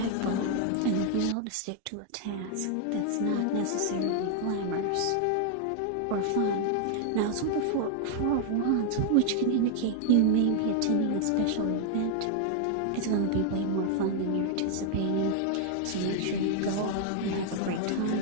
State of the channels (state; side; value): different; both; correlation 0.00